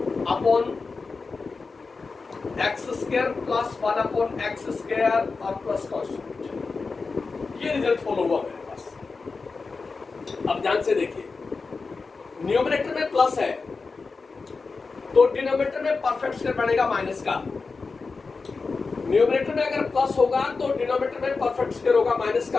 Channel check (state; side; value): quieter; right; 4.3 dB